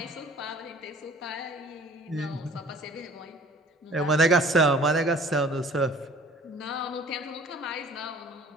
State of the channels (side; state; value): both; normal; correlation 0.51